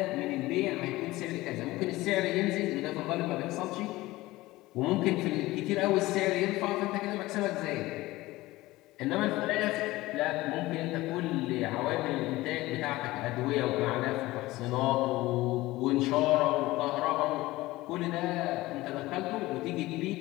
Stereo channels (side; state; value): right; quieter; 18.7 dB